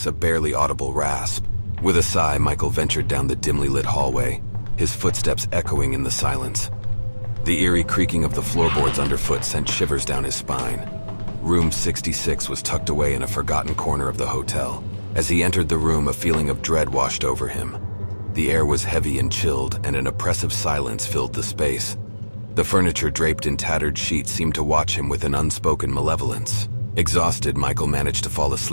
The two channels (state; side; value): inverted; both; correlation -1.00